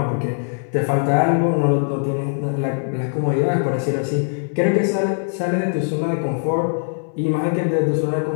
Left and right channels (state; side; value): silent; right; 62 dB below the other